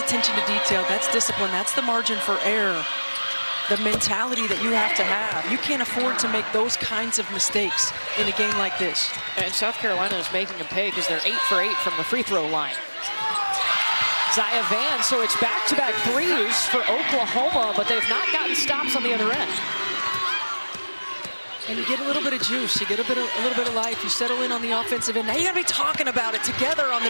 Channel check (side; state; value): both; inverted; correlation -1.00